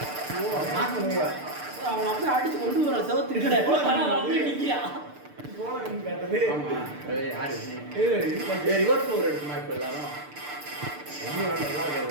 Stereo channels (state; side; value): late; left; 6.7 ms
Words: அவன் அப்படியே அடிச்சு கொண்டு வர செவத்துக்கிட்ட அப்படியே நிக்கிறா ரிவர்ஸ் ஓவர் எடுக்குமா இப்போ எல்லாரும்